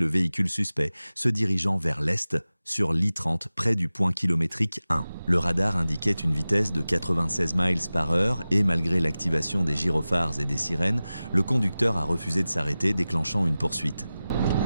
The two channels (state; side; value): inverted; both; correlation -0.96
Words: véhicule suspect se dirigeant vers l'est sur l'I-30 près du point kilométrique 1. Le radar indiquait une vitesse de 96 miles par heure et malgré l'activation des gyrophares et des sirènes, le conducteur a refusé de s'arrêter, déclenchant une poursuite.